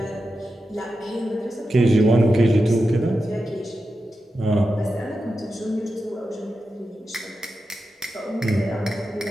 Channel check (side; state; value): both; normal; correlation 0.90